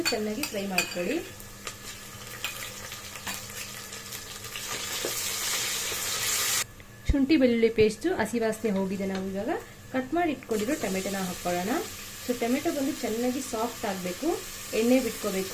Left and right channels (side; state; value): both; identical; correlation 1.00